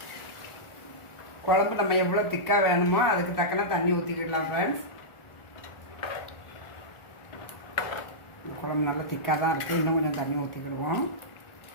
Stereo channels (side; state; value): right; late; 1.4 ms